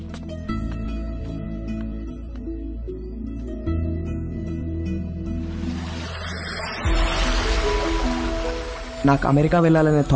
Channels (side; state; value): both; identical; correlation 1.00